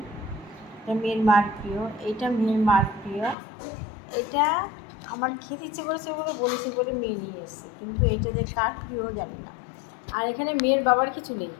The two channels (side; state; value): right; drops out; at 3.4 s